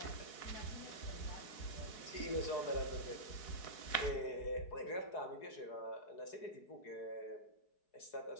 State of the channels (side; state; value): right; late; 4.7 ms